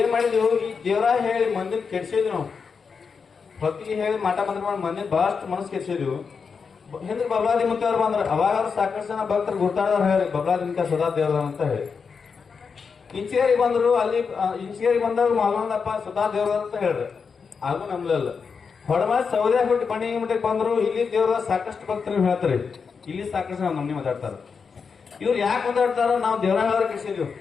ಮಾಡಿದ್ವಿ, ಈ ದೇವರ ಹೇಳಿ ಮಂದಿನ ಕೆಡ್ಸಿದ್ವಿ. ನಾವು ಭಕ್ತಿಗೆ ಹೇಳಿ ಮಾಟ ಮಂತ್ರ ಮಾಡಿ ಮಂದಿನ ಬಹಳಷ್ಟು ಮನಸ್ಸು ಕೆಡ್ಸಿದ್ವಿ. ಹಿಂದೆ ಬಬಲಾದಿ ಮುತ್ತವ್ರು ಬಂದ್ರ ಅವಾಗ ಸಾಕಷ್ಟು ಜನ ಭಕ್ತರು ಗುರ್ತಾಡೋರು ಹೇಳಿ ಬಬಲಾದಿನ ಸದಾ ದೇವರ ಅಂತ ಹೇಳಿ. ಇಂಚಿಗೇರಿ ಬಂದ್ರು, ಅಲ್ಲಿ ಇಂಚಿಗೇರಿ ಬಂದಾಗ ಮಾಲೊಂದಪ್ಪ ಸದಾ ದೇವರ ಅಂತ ಹೇಳ್ರಿ. ಹಾಗೂ ನಂಬಲಿಲ್ಲ. ಹೊಡಮ ಸೌದೆ ಬಿಟ್ಟು ಬಣಿ ಮಠಕ್ಕೆ ಬಂದ್ರು. ಇಲ್ಲಿ ದೇವರ ಸಾಕಷ್ಟು ಭಕ್ತರು ಹೇಳ್ತಾರೆ. ಇಲ್ಲಿ ಸಾಕಷ್ಟು ನಮ್ಮನೆ ಮಾತಾಡ್ತಾರ. ಇವ್ರು ಯಾಕೆ ಮಾತಾಡ್ತಾರ, ನಾವು ದೇವರ ಹೇಳೋರು ಕೆಡ್ಸಿದ್ವಿ.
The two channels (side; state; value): right; quieter; 5.6 dB